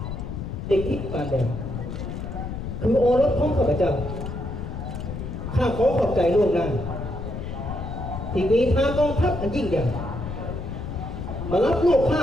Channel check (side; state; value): left; noise; rumble, 6 dB below the sound